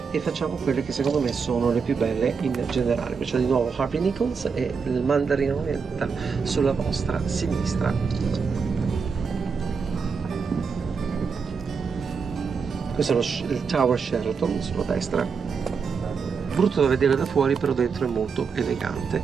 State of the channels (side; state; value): left; quieter; 5.6 dB